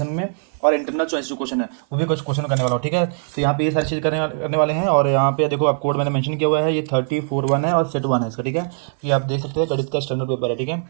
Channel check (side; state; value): left; silent; 58 dB below the other